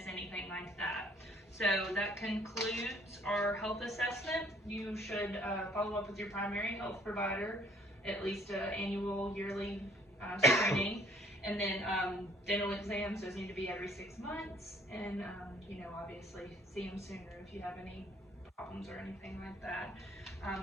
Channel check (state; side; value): normal; both; correlation 0.60